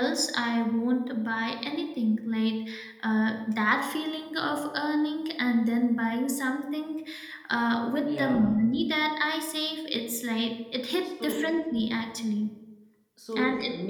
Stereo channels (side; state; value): both; identical; correlation 1.00